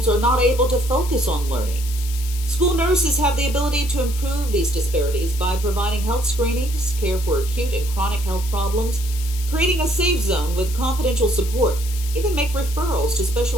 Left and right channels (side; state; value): left; noise; hiss, 12 dB below the sound